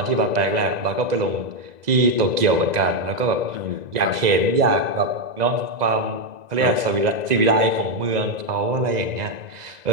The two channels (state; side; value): late; left; 2.0 ms